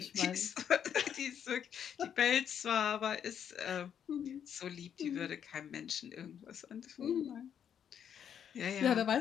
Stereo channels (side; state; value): right; quieter; 8.6 dB